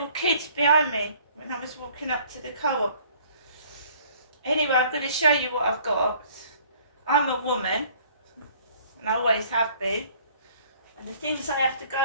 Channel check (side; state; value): both; inverted; correlation -0.56